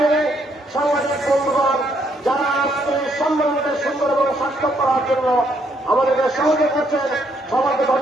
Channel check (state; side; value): normal; both; correlation 0.72